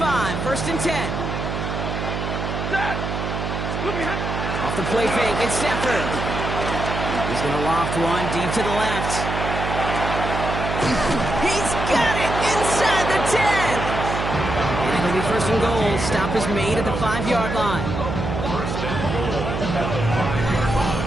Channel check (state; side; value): noise; right; hum, 3 dB below the sound